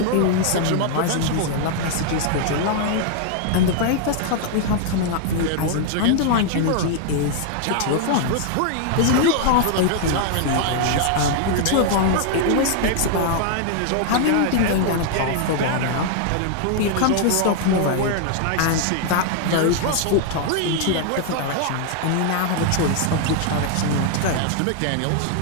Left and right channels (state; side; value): different; both; correlation 0.00